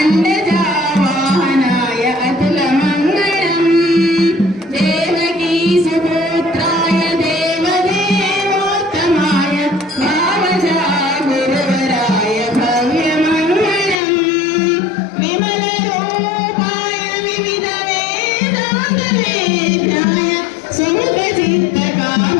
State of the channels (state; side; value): drops out; right; at 14.0 s